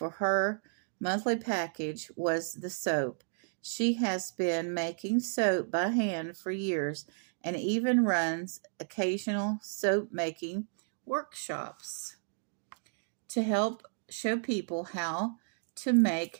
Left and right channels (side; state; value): left; silent; digital silence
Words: her monthly package was the soap. She has been making soap by hand for years and even runs occasional soap making workshops to help show people how to